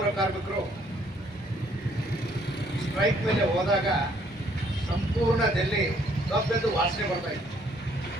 ಕಾರ್ಮಿಕರು ಸ್ಟ್ರೈಕ್ ಮೇಲೆ ಹೋದಾಗ ಸಂಪೂರ್ಣ ಡೆಲ್ಲಿ ಕಬ್ಬೆದ್ದು ವಾಸನೆ ಬರ್ತಾ ಇತ್ತು.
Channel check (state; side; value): normal; both; correlation 0.65